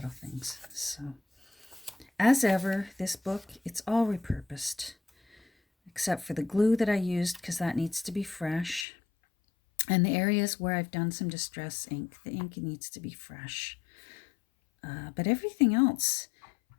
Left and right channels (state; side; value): drops out; right; at 8.8 s